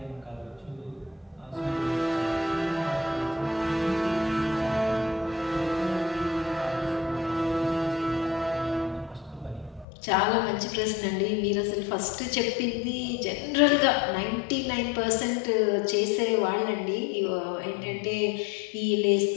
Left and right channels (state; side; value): drops out; right; at 9.9 s